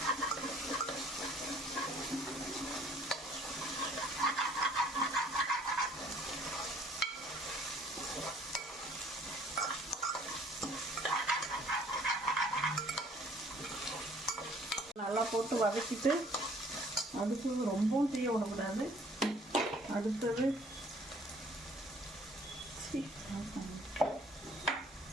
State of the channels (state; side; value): normal; both; correlation 0.57